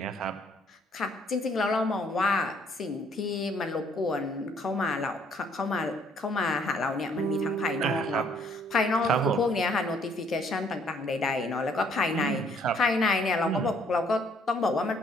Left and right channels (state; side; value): normal; both; correlation 0.64